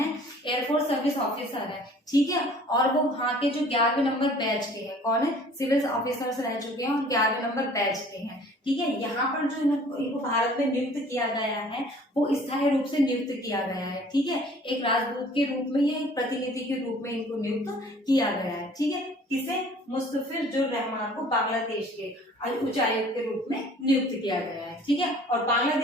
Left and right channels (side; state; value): both; normal; correlation 0.52